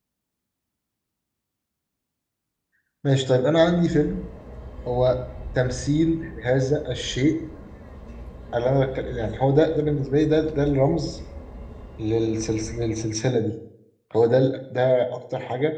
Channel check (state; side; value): identical; both; correlation 1.00